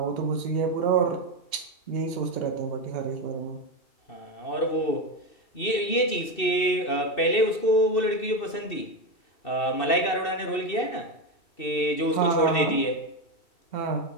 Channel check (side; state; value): right; late; 2.6 ms